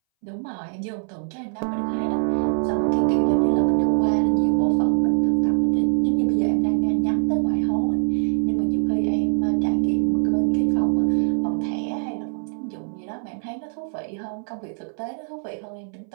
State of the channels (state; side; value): silent; left; 62 dB below the other